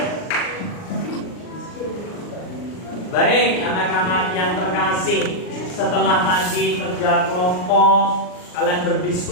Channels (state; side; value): late; right; 39 ms